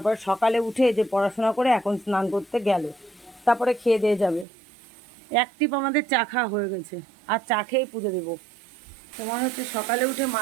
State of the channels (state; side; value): drops out; left; at 4.5 s